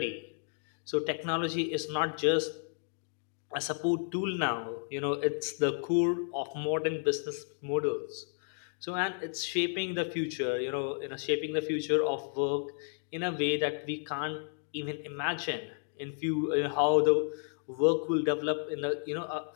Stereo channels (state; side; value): silent; right; 56 dB below the other